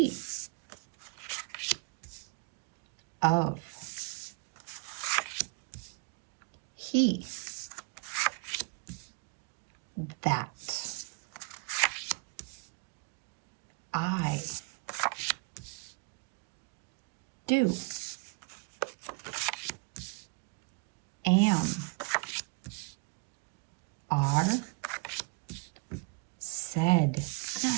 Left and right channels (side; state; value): left; quieter; 29.6 dB